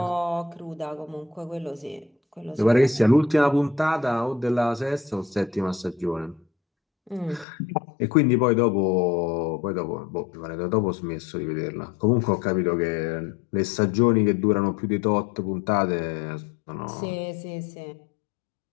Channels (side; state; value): right; drops out; at 7.5 s